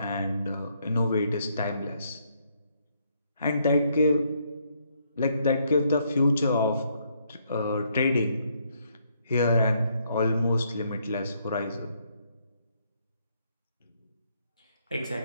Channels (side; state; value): both; inverted; correlation -0.72